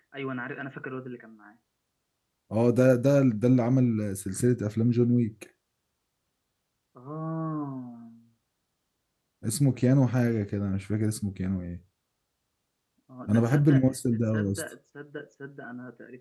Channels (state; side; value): identical; both; correlation 1.00